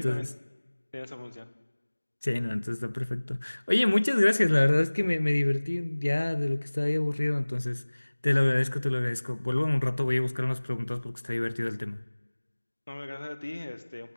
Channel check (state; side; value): inverted; both; correlation -1.00